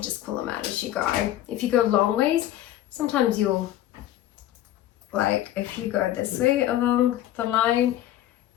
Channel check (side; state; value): right; quieter; 13.2 dB